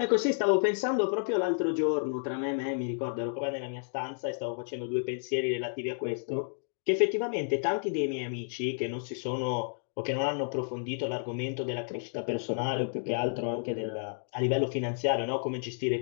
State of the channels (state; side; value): silent; right; digital silence